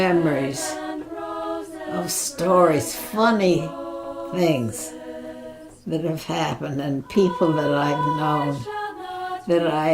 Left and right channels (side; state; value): both; identical; correlation 1.00